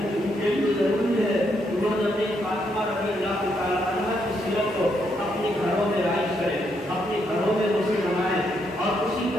ان کے لیے ضروری ہے وہ حضرت فاطمہ رضی اللہ تعالیٰ عنہا کی سیرت کو اپنے گھروں میں رائج کریں، اپنے گھروں میں اسے نمائیں، اور اسی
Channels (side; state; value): both; normal; correlation 0.77